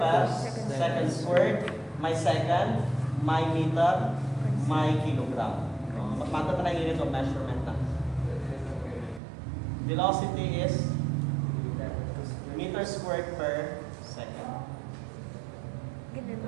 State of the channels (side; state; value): left; drops out; at 9.2 s